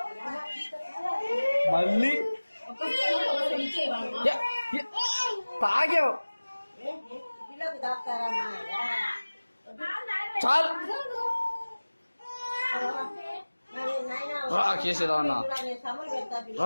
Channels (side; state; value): both; inverted; correlation -1.00